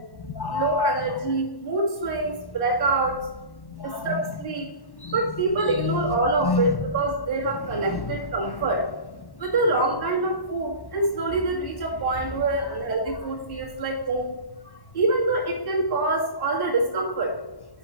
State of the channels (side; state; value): right; late; 1.1 ms